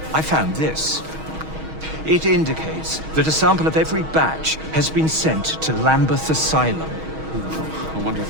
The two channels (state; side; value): late; left; 6.3 ms